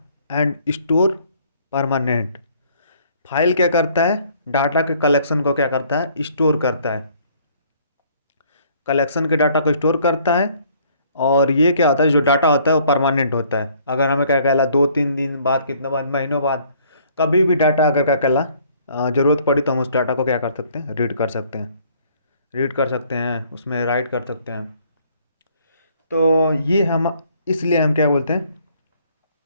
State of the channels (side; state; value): both; inverted; correlation -0.61